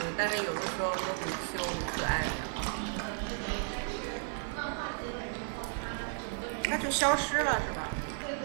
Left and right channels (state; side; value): silent; left; 55 dB below the other